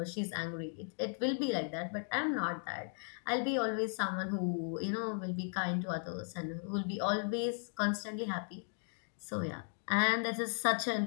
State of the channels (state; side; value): silent; right; 53 dB below the other